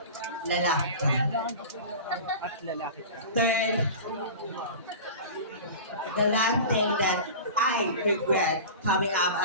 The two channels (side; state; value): both; inverted; correlation -0.34